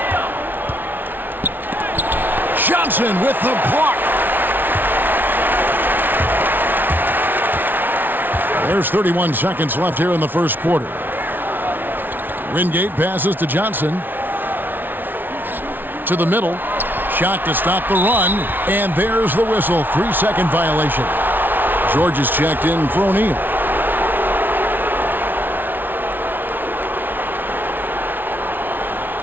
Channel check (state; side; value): late; left; 0.092 ms